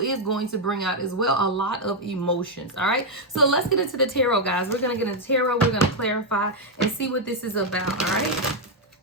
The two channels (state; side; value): normal; both; correlation 0.01